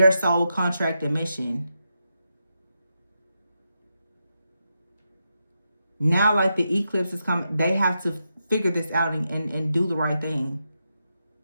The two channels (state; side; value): inverted; both; correlation -0.85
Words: soul contract and mission. Now, like the eclipse is coming, they have to figure this out and do the right thing.